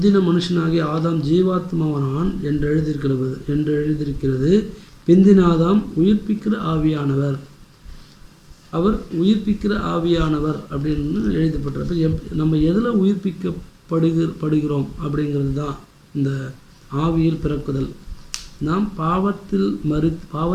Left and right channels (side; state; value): both; identical; correlation 1.00